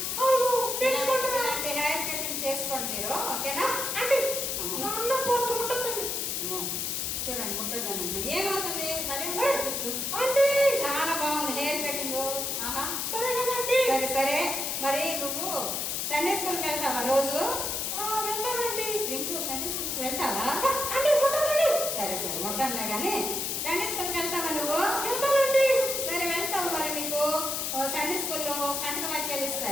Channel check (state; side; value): noise; left; hiss, 1 dB below the sound